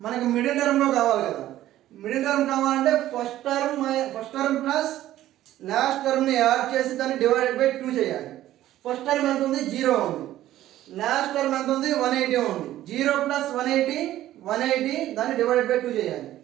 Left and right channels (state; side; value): quieter; left; 13.8 dB